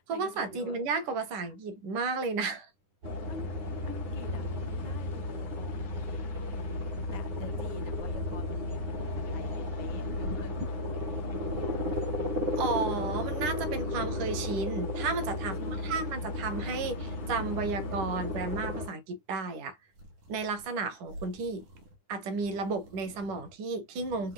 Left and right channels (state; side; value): late; left; 9.9 ms